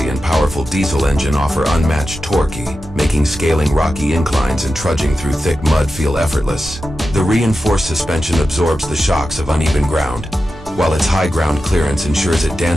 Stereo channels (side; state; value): both; normal; correlation 0.91